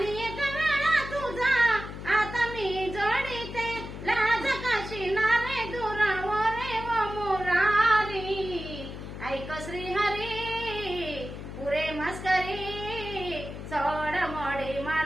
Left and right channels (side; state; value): left; noise; hum, 10 dB below the sound